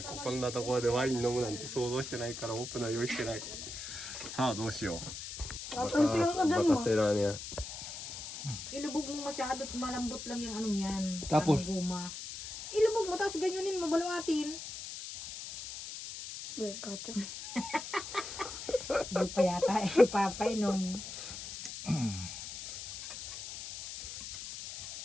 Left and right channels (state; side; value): noise; left; hiss, 9 dB below the sound